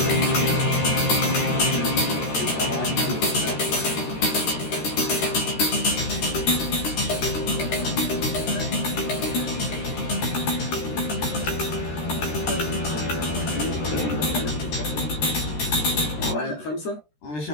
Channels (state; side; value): late; right; 13 ms